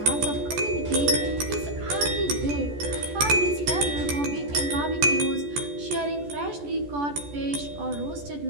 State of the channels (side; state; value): left; late; 14 ms